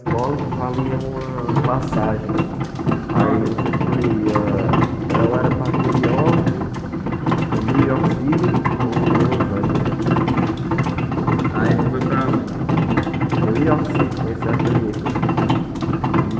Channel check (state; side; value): identical; both; correlation 1.00